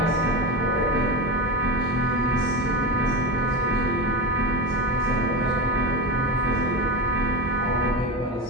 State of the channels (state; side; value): normal; both; correlation 0.22